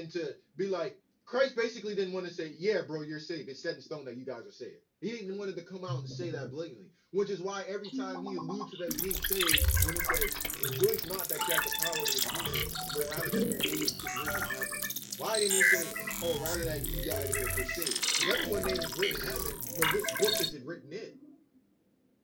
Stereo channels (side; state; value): both; identical; correlation 1.00